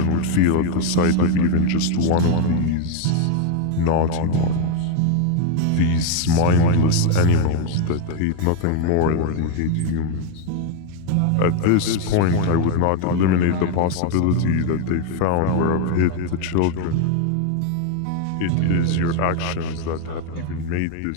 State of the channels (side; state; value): both; different; correlation 0.01